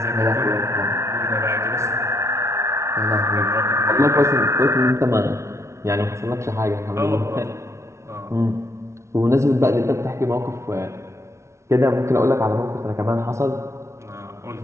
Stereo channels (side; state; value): left; late; 0.13 ms